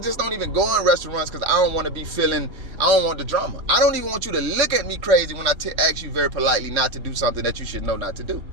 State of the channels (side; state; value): left; late; 3.4 ms